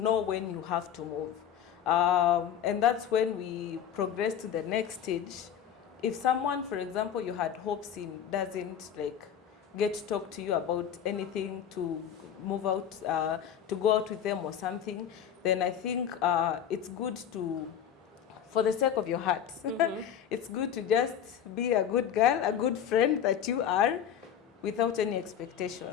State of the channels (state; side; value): quieter; right; 9.0 dB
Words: when you have to move. And that's when we progress to the next stage. If someone, for example, you had hopes in doesn't get to talk to you about anything, to move out, to go out with them or something, then I think it's good to for the sake of your heart. It's good to just be a good girl, a good friend that you are, without any